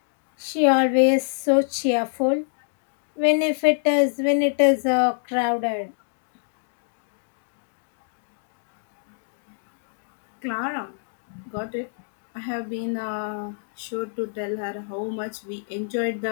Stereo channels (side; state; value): right; silent; digital silence